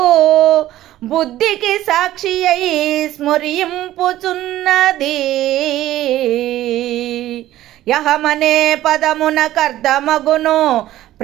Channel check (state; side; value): quieter; left; 14.3 dB